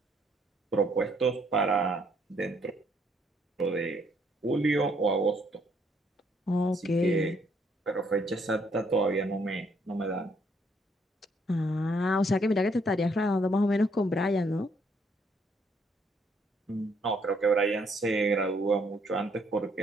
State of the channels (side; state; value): both; normal; correlation 0.69